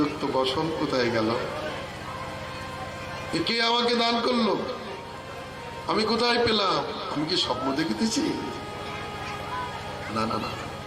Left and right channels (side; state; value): both; identical; correlation 1.00